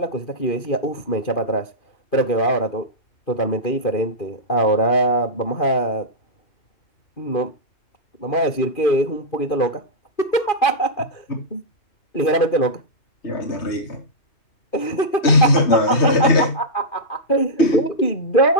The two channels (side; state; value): right; late; 2.5 ms